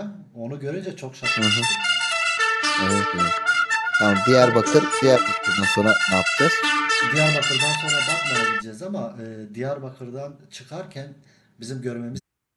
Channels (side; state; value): both; identical; correlation 1.00